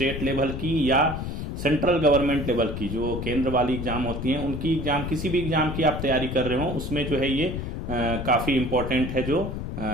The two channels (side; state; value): left; noise; rumble, 5 dB below the sound